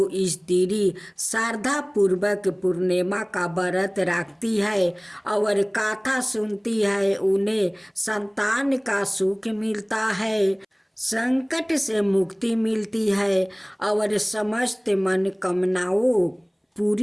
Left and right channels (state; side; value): identical; both; correlation 1.00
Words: स्त्री श्रद्धा पूर्वक पूर्णिमा का व्रत रखती है और कथा सुनती है, उन्हें संतान का सुख मिलता है, संकट से मुक्ति मिलती है और समस्त मनोकामनाओं